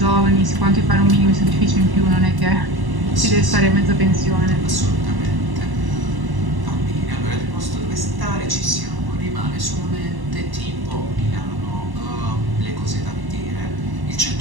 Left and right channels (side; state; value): left; late; 1.1 ms